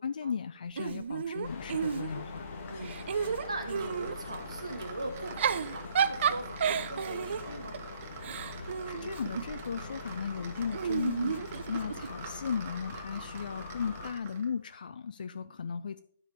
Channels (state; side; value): inverted; both; correlation -0.67